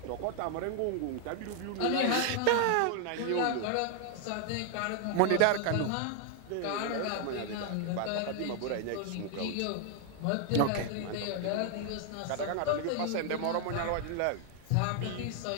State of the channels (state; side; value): different; both; correlation 0.00